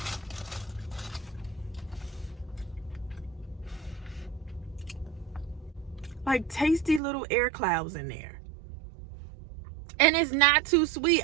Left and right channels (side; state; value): left; drops out; at 7.0 s